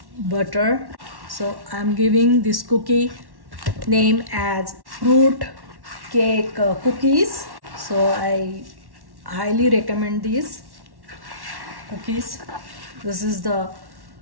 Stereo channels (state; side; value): late; left; 1.1 ms